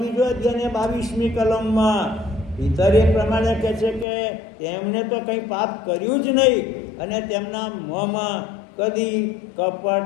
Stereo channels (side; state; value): right; drops out; at 4.0 s